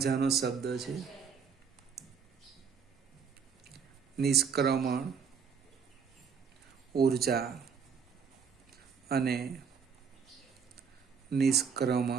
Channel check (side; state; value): left; quieter; 6.4 dB